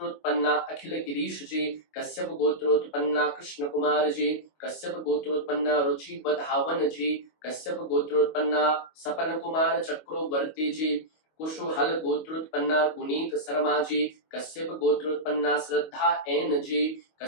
अखिल गिरीश जी कश्यप गोत्रोत्पन्ना कृष्ण कुमार जी कश्यप गोत्रोत्पन्ना रुचि बधावन जी कश्यप गोत्रोत्पन्ना सपन कुमार चक्रवर्ती जी कुशुहल गोत्रोत्पन्ना गुनीत शर्मा जी कश्यप गोत्रोत्पन्ना श्रद्धा एन जी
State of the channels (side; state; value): right; late; 25 ms